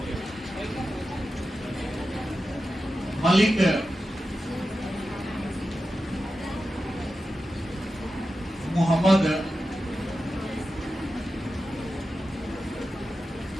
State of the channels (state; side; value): normal; both; correlation 0.92